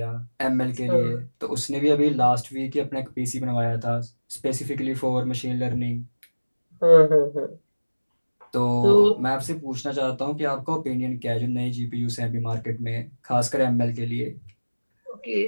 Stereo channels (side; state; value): both; inverted; correlation -1.00